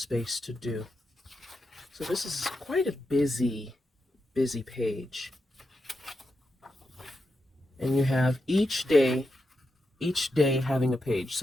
to do. So this is quite a busy page. And you have each day having a page.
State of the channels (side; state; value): both; normal; correlation 0.87